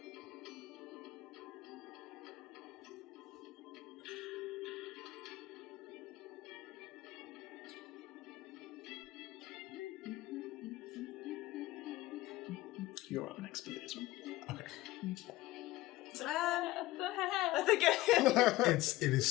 You're up next, Billy, as well. I think It is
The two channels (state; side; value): quieter; right; 17.5 dB